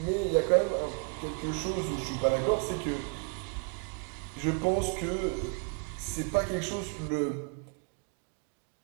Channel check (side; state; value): left; quieter; 37.6 dB